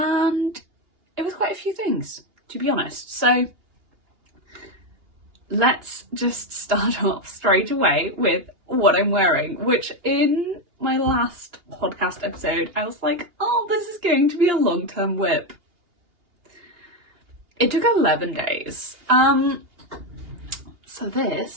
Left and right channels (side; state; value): left; late; 2.8 ms